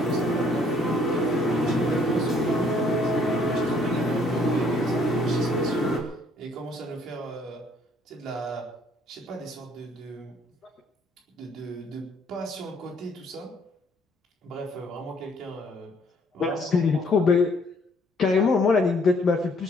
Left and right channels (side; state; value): both; normal; correlation 0.64